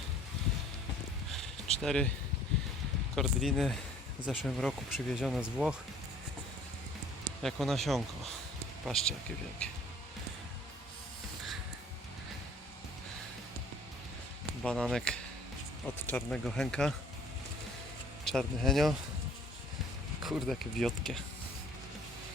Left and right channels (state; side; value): normal; both; correlation 0.54